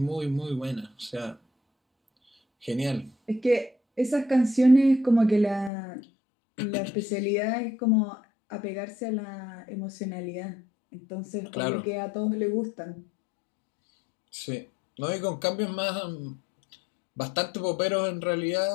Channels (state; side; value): drops out; right; at 5.7 s